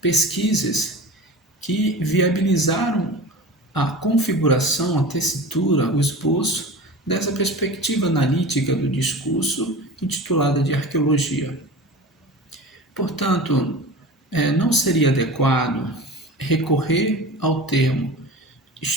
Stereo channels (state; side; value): normal; both; correlation 0.34